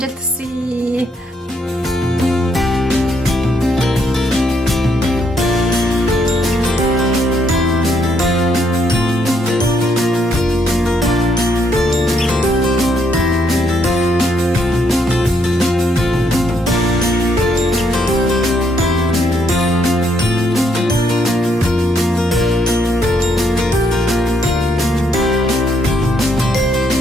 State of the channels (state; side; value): normal; both; correlation 0.73